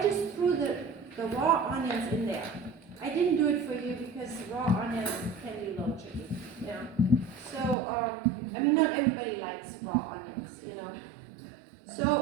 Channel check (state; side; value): drops out; left; at 7.8 s